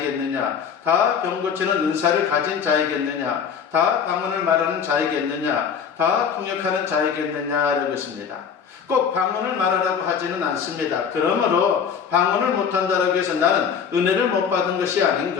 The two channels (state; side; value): quieter; right; 7.1 dB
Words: 다 병 고치는 은사를 가진 자이겠느냐? 다 방언을 말하는 자이겠느냐? 다 통역하는 자이겠느냐라고 했습니다. 꼭 방언을 말하라고 하지는 않습니다. 그러므로 방언을 못한다라고 해서 나는 은혜를 못 받은 것이